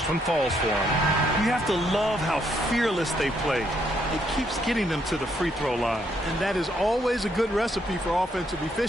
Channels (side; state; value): both; normal; correlation 0.73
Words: one falls for him. You have to love how fearless they play. It keeps getting them to the free throw line. And that is always a good recipe for offensive